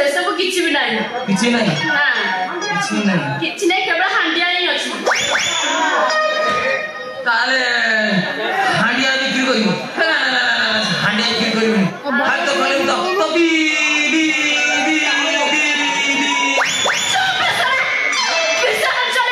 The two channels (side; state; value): both; identical; correlation 1.00